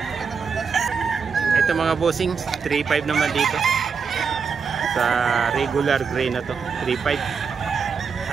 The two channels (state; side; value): quieter; left; 5.8 dB